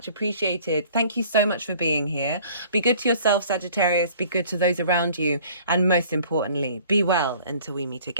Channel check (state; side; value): inverted; both; correlation -0.52